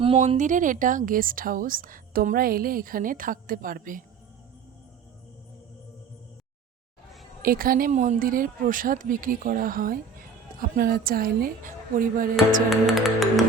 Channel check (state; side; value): quieter; left; 5.4 dB